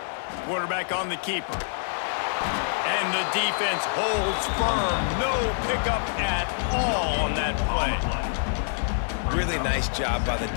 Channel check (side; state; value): right; silent; digital silence